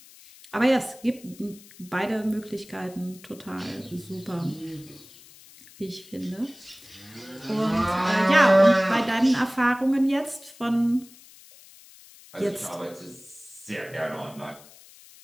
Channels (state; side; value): noise; left; hiss, 22 dB below the sound